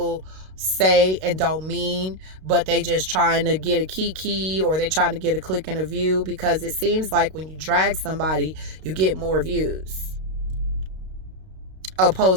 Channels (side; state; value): left; late; 32 ms